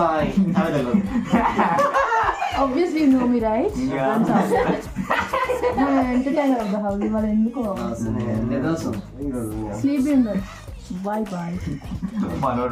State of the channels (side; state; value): both; identical; correlation 1.00